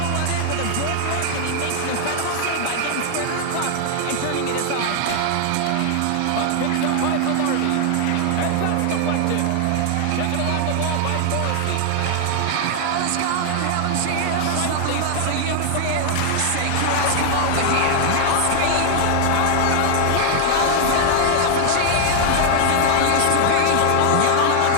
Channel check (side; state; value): both; different; correlation 0.00